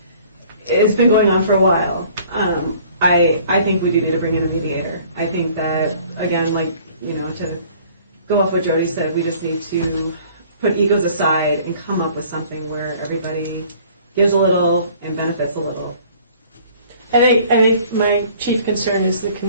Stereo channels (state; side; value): inverted; both; correlation -0.53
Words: has been going on for a while. I think we do need to bring in a mediator. I think that, again, to go off what Jody said, we just need to put egos aside and come up with something where everybody gives a little and benefits a little. I think my chief concern is the